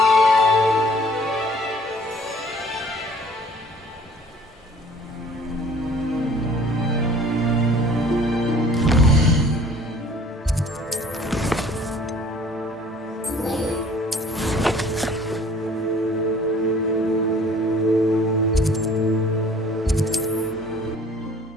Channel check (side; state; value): both; normal; correlation 0.52